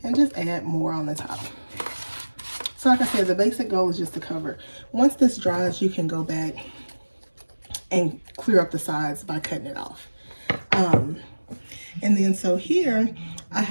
and just add more on the top. So like I said, the basic goal is just to cover. Once this dries, you can go back and clear up the sides by cutting it off. And then so here I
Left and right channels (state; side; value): inverted; both; correlation -1.00